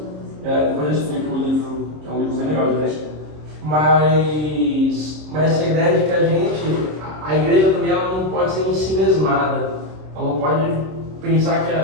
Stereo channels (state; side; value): late; left; 26 ms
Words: Depois eu explico o livro, que é um livro bem legal de ler. Mas essa ideia de que a igreja também ela não pode ser ensimesmada, ela não pode pensar que